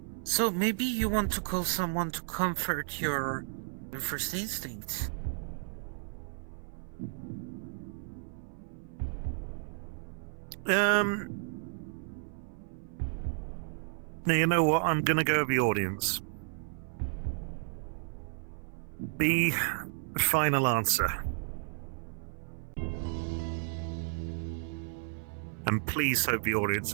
So maybe you want to call someone to comfort your first instinct. Now, you know what? I'm gonna go with the audience. The final answer. And please hope the audience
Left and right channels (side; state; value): left; silent; 56 dB below the other